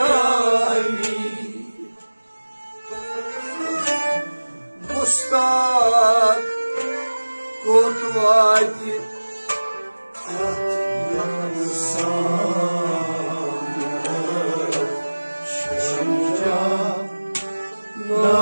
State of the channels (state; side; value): inverted; both; correlation -1.00